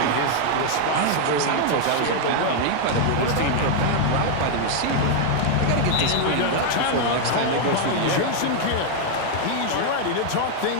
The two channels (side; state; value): both; different; correlation 0.00